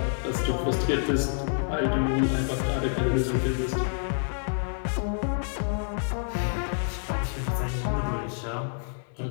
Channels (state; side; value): silent; right; digital silence